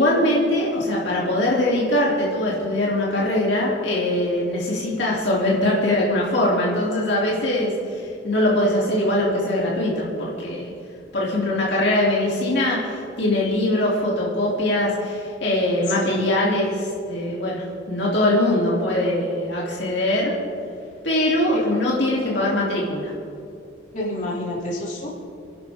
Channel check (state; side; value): normal; both; correlation 0.25